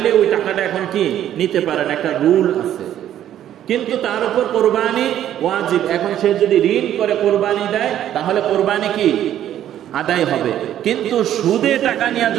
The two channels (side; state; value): left; quieter; 11.3 dB